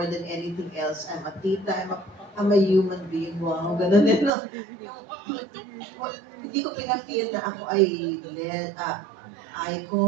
than anything else. I'm a tita, I'm a human being. Wow, ganun din, no? Hindi ko pina-feel na ako ay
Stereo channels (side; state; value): left; drops out; at 4.3 s